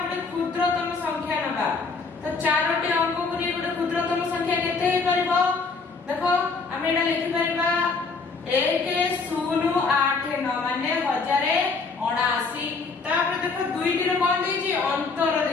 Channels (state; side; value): quieter; right; 4.4 dB